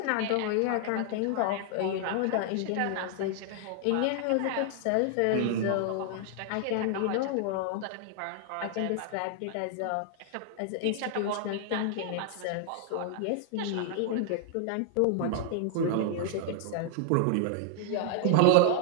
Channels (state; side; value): different; both; correlation 0.00